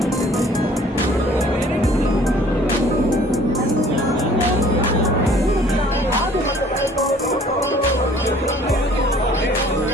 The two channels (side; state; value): both; normal; correlation 0.54